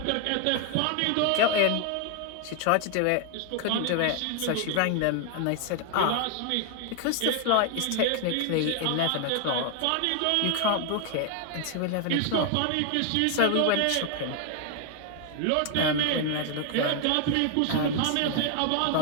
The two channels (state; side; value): different; both; correlation 0.00